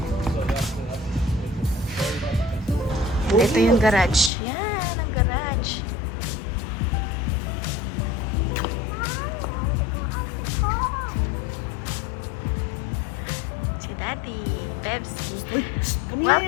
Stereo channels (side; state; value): right; drops out; at 4.3 s